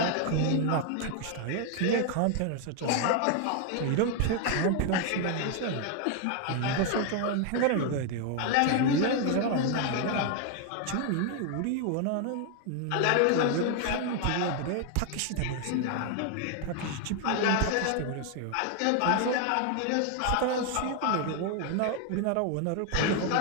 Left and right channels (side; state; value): both; different; correlation 0.00